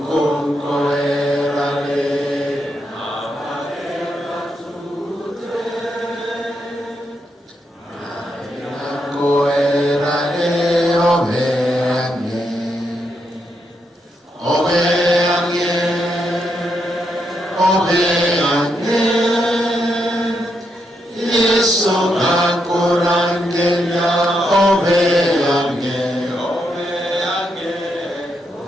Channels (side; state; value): both; normal; correlation 0.81